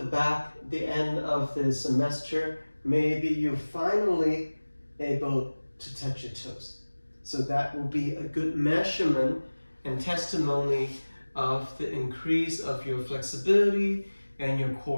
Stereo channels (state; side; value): inverted; both; correlation -1.00